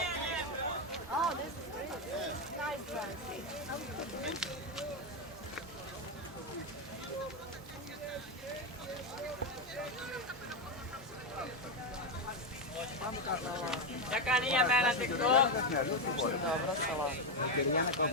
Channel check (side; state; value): both; normal; correlation 0.07